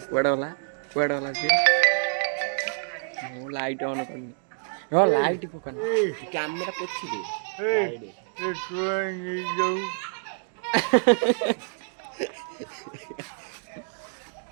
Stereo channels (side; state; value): left; silent; digital silence